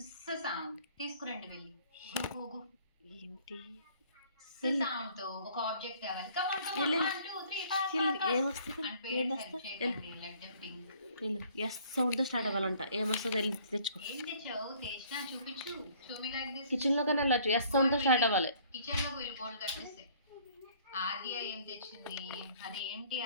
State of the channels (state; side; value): inverted; both; correlation -0.58